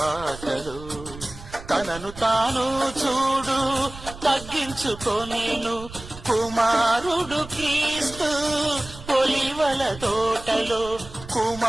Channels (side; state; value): right; noise; rumble, 15 dB below the sound